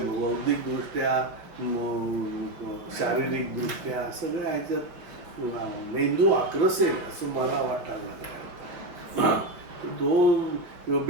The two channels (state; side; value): late; left; 5.4 ms